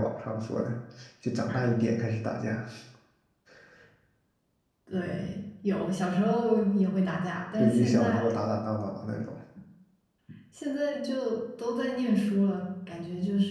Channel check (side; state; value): both; identical; correlation 1.00